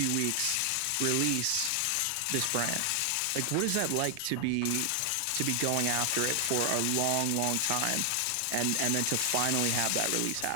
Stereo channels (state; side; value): different; both; correlation 0.00